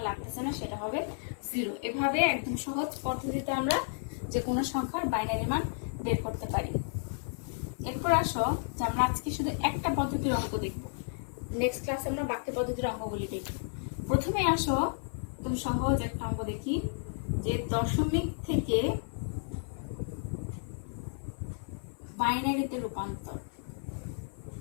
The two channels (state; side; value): silent; right; 56 dB below the other